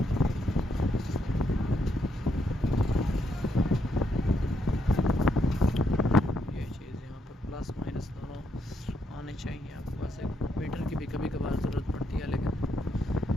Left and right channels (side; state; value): both; normal; correlation 0.77